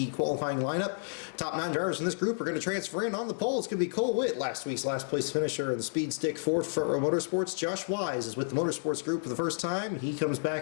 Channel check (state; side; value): silent; right; digital silence